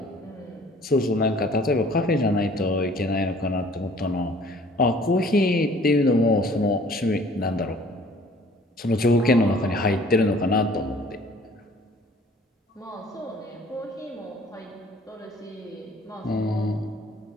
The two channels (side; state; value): both; normal; correlation 0.53